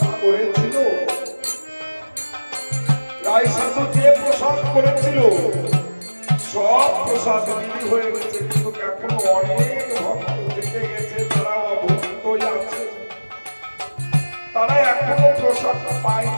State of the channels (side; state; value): both; inverted; correlation -1.00